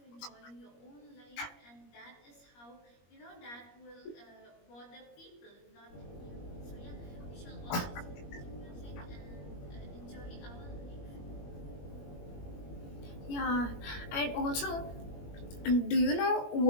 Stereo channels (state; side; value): late; right; 21 ms